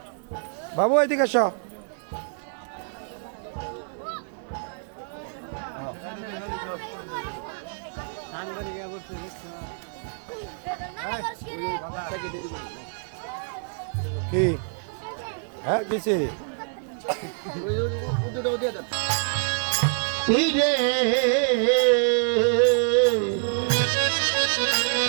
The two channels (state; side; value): silent; left; 61 dB below the other